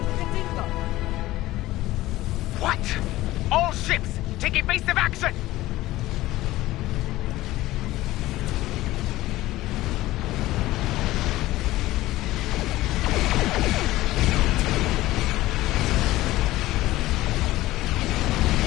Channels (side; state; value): right; quieter; 16.8 dB